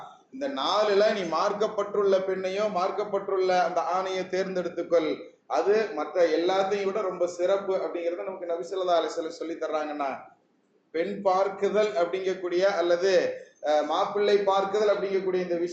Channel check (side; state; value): both; identical; correlation 1.00